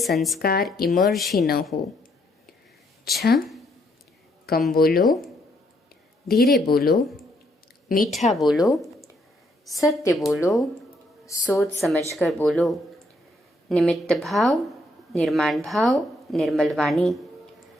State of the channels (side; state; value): both; normal; correlation 0.72